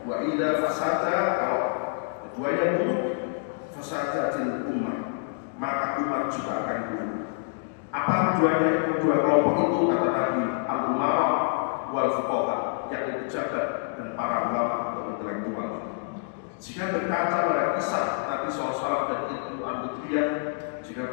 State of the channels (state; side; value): silent; right; digital silence